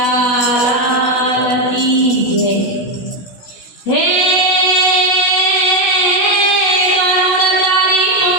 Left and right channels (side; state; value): right; late; 17 ms